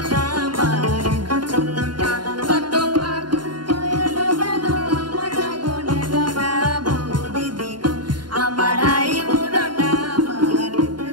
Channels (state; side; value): late; left; 0.71 ms